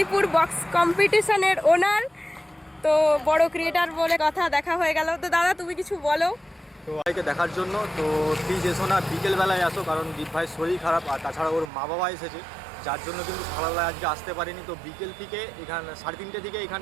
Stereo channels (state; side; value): drops out; left; at 11.7 s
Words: বক্স কম্পিটিশনের ওনার। তো বড় ক্রিয়েটার বলে কথা, দেখা হয়ে গেল। তো দাদা তুমি কিছু বলো। তো ভাইকে দেখার জন্য তো প্লিজ এসো না, বিকেলবেলায় আসো, কারণ দীপ ভাইয়ের শরীর খারাপ, আর তাছাড়া ওর মা বাবা এসেছে, যার জন্য কিন্তু সকালবেলায় আজকে আসতে পারিনি। তো বিকেল থেকে এখানে 3:30 থেকে